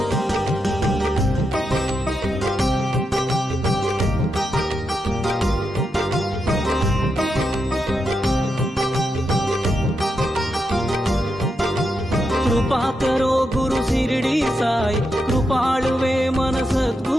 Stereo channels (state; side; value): normal; both; correlation 0.85